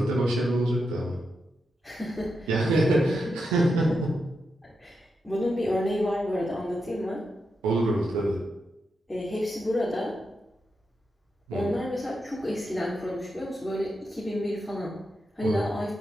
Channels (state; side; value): normal; both; correlation 0.86